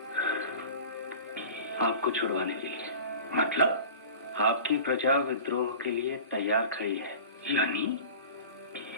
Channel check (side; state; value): both; inverted; correlation -0.38